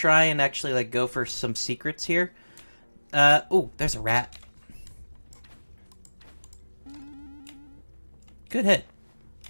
and actually like go for some secrets here. Ooh, there's a rat. Good hit.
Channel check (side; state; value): both; inverted; correlation -1.00